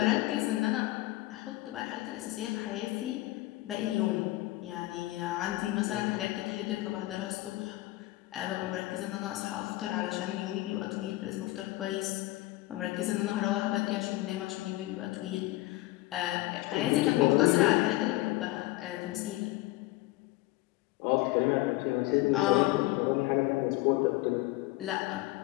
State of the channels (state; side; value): quieter; right; 18.7 dB